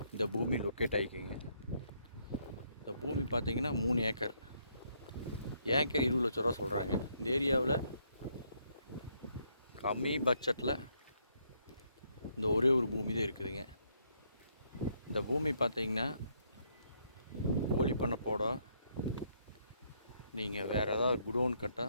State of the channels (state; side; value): inverted; both; correlation -0.72